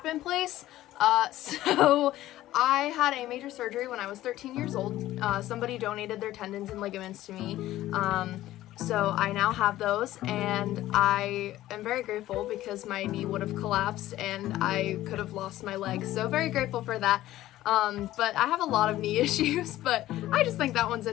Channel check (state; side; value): quieter; right; 14.8 dB